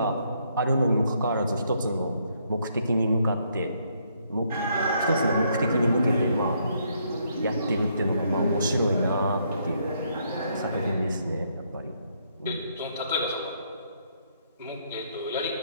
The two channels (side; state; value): both; inverted; correlation -0.72